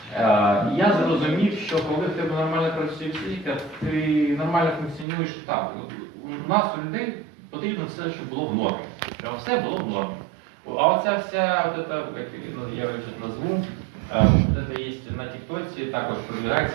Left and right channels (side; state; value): left; drops out; at 5.1 s